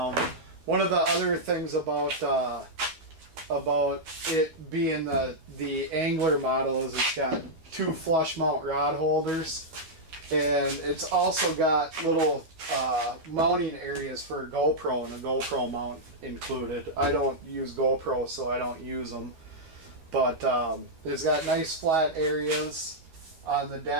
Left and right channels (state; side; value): late; left; 12 ms